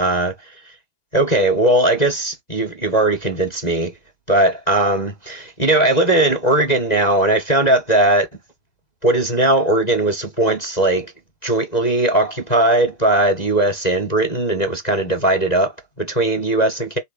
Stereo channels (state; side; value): late; right; 1.9 ms